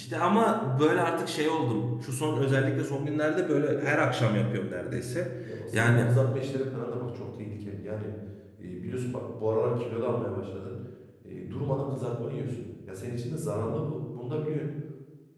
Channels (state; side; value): identical; both; correlation 1.00